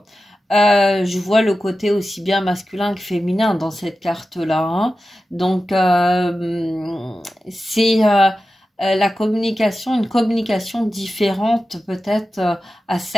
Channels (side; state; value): both; normal; correlation 0.93